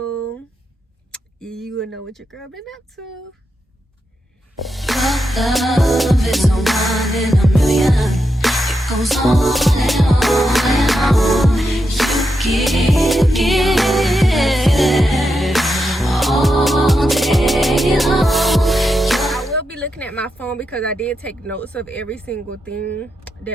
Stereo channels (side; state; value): both; normal; correlation 0.85